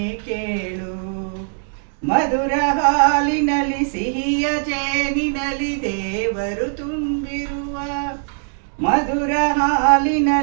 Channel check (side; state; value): left; silent; 65 dB below the other